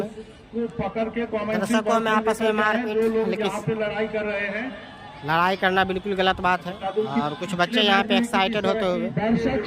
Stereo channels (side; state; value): both; identical; correlation 1.00